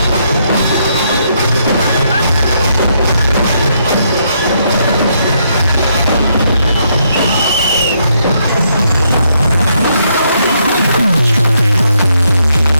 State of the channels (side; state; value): both; inverted; correlation -0.75